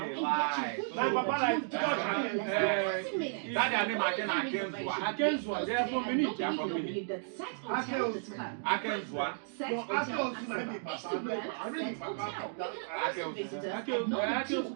lie. Now, Papa like That their name Akenzwa. Akenzwa, they are from Benin. They are from Benin. Akenzwa. No, Akenzwa might be Papa. I mean, Papa.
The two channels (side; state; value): left; silent; digital silence